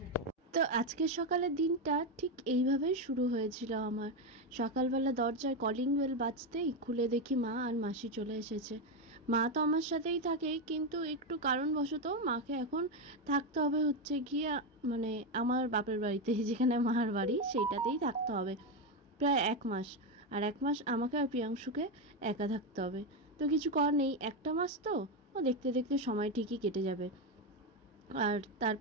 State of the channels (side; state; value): both; normal; correlation 0.09